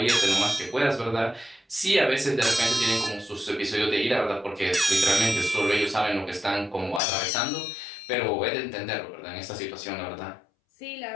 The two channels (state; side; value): drops out; right; at 7.0 s